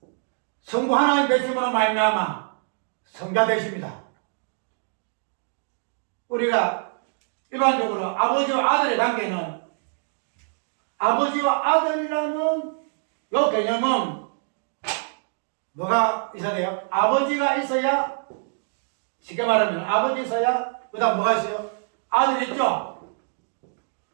성부 하나님 되심으로 말미암아 성자 되십니다. 우리가 일반적으로 아버지와 아들의 관계는, 아버지와 아들이라는 요 개념은 뭐가 있어야 돼요? 아버지가 있어야, 쉽게 말하면 아버지 있어야 그 다음 뭐가 있어요? 아들이 있죠?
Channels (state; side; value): silent; left; digital silence